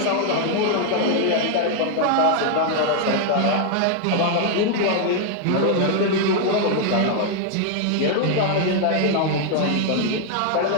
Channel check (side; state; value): both; different; correlation 0.00